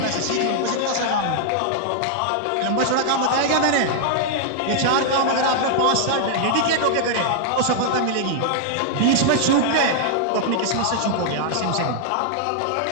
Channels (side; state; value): both; different; correlation -0.01